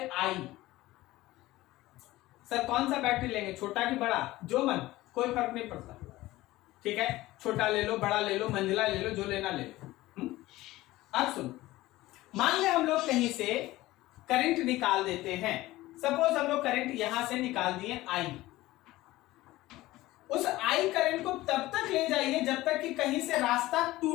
आई। सर कौन सा बैटरी लेंगे, छोटा कि बड़ा, जो मन, कोई फर्क नहीं पड़ता। ठीक है, छोटा ले लो, बड़ा ले लो, मंझला ले लो, जो लेना ले लो। अब सुन, मान ले हम लोग कहीं से करंट निकाल देते हैं। सपोज हम लोग करंट यहां से निकाल दिए आई। उस आई करंट को तब तक ले जाइए जब तक कि कहीं से रास्ता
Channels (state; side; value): quieter; right; 17.6 dB